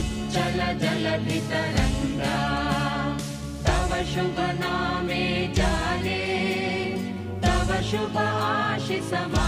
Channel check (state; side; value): identical; both; correlation 1.00